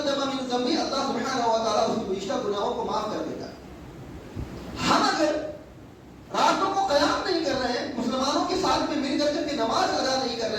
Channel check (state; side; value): identical; both; correlation 1.00